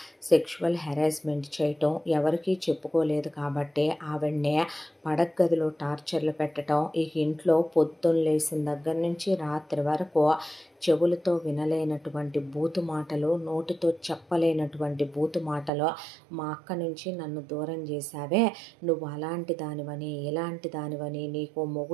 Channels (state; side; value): drops out; left; at 15.7 s